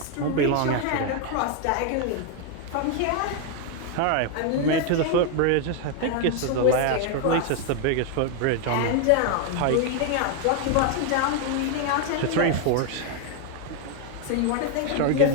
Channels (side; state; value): both; different; correlation 0.01